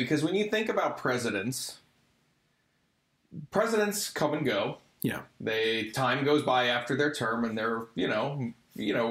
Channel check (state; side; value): identical; both; correlation 1.00